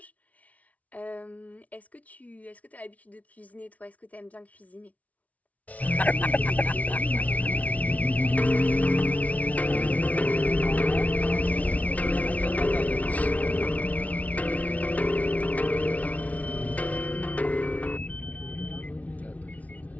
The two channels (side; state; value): right; late; 0.069 ms